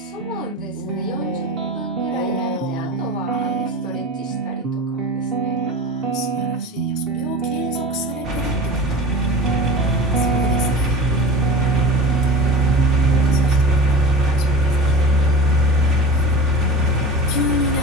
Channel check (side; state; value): both; normal; correlation 0.34